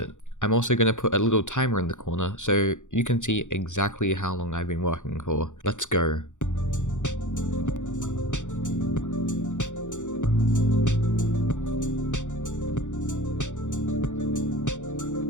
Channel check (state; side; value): late; right; 0.85 ms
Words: I'm also going to put a little timer in the corner so you can see exactly how long I've been working for. Let's go.